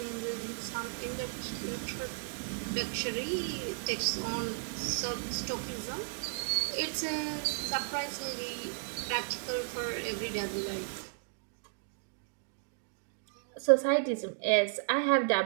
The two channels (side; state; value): left; silent; digital silence